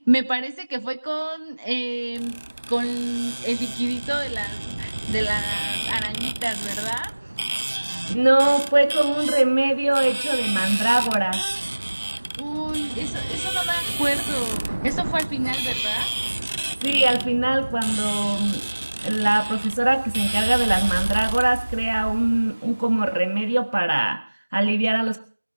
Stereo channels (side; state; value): both; inverted; correlation -1.00